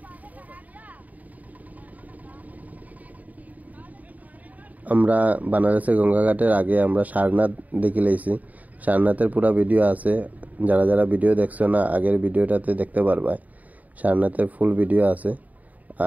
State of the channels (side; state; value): left; late; 0.075 ms